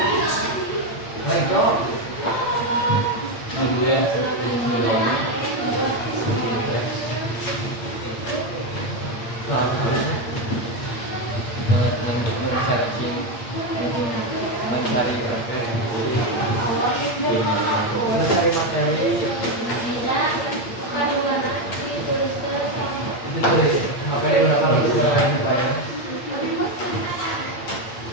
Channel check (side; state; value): right; late; 8.7 ms